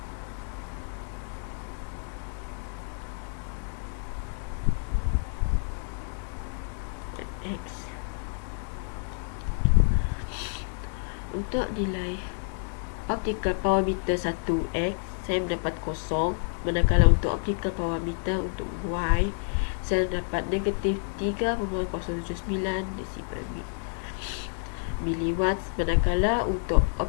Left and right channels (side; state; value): right; silent; 59 dB below the other